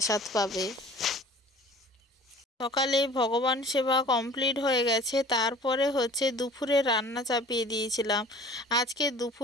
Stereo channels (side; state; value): both; normal; correlation 0.46